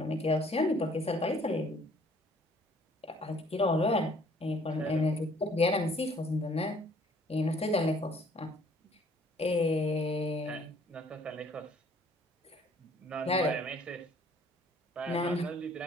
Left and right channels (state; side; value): normal; both; correlation 0.59